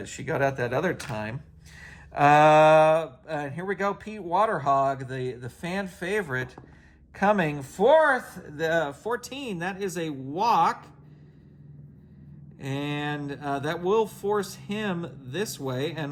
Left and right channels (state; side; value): identical; both; correlation 1.00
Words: out that other time. Here we go, Pete Waterhog, the fan favorite, coming fourth, the 14. That is a walk. And that will force him this way, and